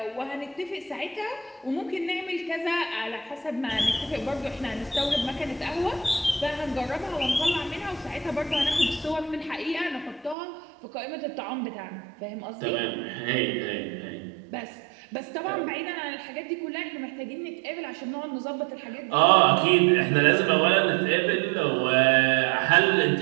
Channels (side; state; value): left; drops out; at 10.4 s